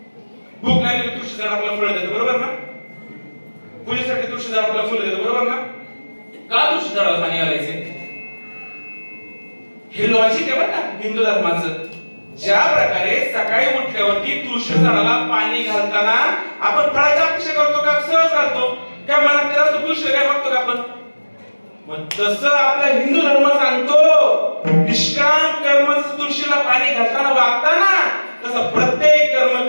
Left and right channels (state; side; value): inverted; both; correlation -1.00